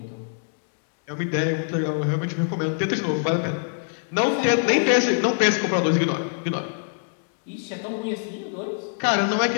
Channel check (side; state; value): right; silent; digital silence